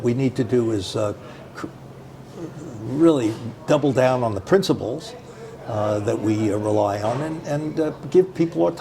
we need to do is really double down on the principles that we rely on and give people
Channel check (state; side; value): identical; both; correlation 1.00